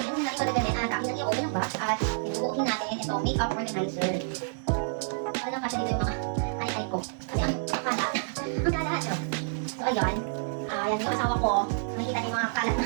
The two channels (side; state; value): left; silent; 59 dB below the other